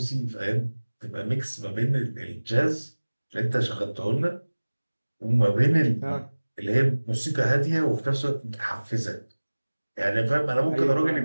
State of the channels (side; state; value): both; inverted; correlation -1.00